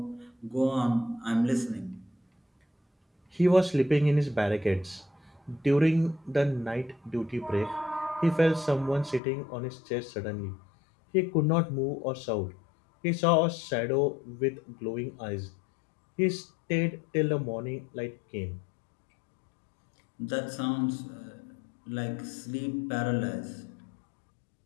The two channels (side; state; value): right; drops out; at 9.2 s